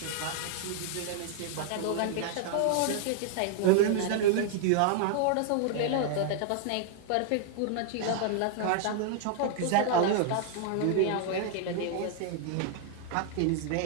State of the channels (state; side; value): different; both; correlation 0.00